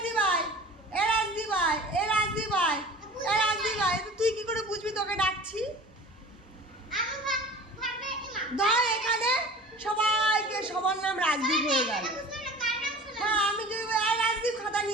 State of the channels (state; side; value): normal; both; correlation 0.41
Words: ভাই, এ রাজদীপ ভাই, এ রাজদীপ ভাই, এ রাজদীপ ভাই, তুই কি করে বুঝবি তোকে ডাকছি? ধর এখানে সবাইকে সবার নাম রাজদীপ হয়ে গেল। হ্যাঁ, আমি যদি রাজদীপ খাতা